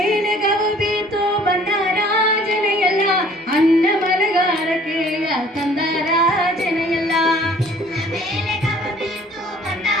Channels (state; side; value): normal; both; correlation 0.54